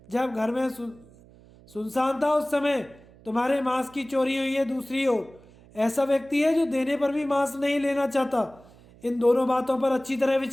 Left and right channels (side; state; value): right; noise; hum, 25 dB below the sound